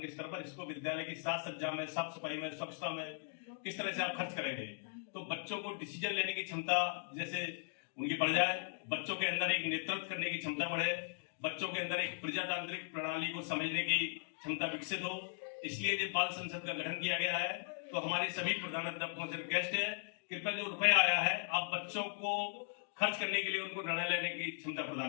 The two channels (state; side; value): silent; right; digital silence